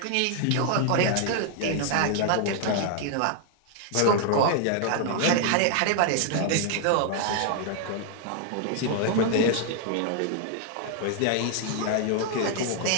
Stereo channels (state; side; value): different; both; correlation 0.00